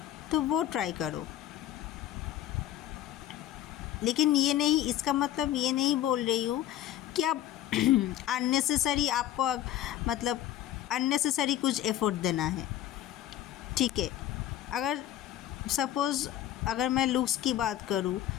तो वो ट्राई करो। लेकिन ये नहीं, इसका मतलब ये नहीं बोल रही हूँ कि आप अननेसेसरी आपको मतलब अननेसेसरी कुछ एफर्ट देना है। ठीक है, अगर सपोज़ अगर मैं लुक्स की बात करूँ,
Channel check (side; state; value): right; quieter; 12.5 dB